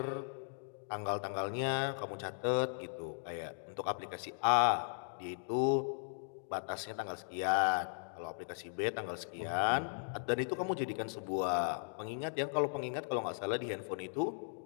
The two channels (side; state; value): right; silent; digital silence